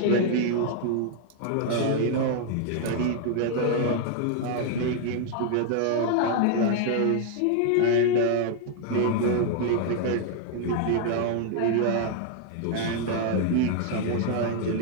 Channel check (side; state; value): both; different; correlation 0.00